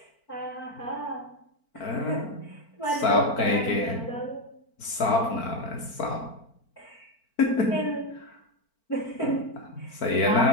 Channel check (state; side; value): late; right; 4.4 ms